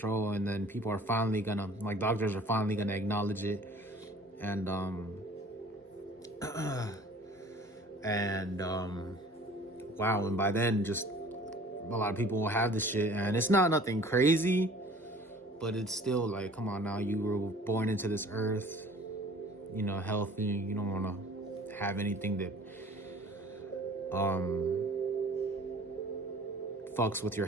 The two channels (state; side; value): normal; both; correlation 0.48